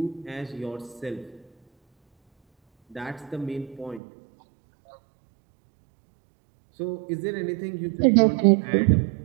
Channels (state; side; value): drops out; left; at 4.0 s